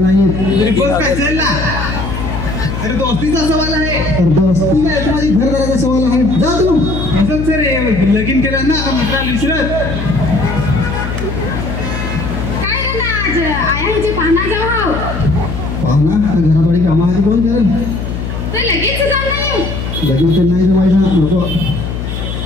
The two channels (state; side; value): noise; left; hum, 5 dB below the sound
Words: येत तरी बोल काय चल ना अरे दोस्तीचा सवाल आहे दोस्ती नाही माझी घरदाराचा सवाल आहे जा तू असंच सर लगीन केलं ना आता मित्राला विसरत काय रे ना आज आयांची पाहणार जाऊ हाव पाहुणा घराबाडी कामा आधी कोण करेल तर लगेच जाऊ नाही लगेच तर नाही जमायचं नको